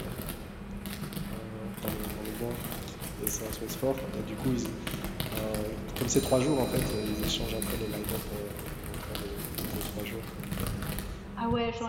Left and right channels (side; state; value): both; identical; correlation 1.00